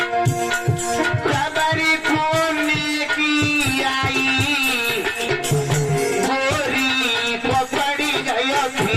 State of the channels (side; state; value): both; identical; correlation 1.00